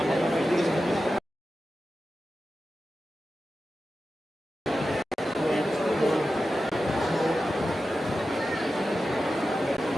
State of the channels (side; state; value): both; normal; correlation 0.92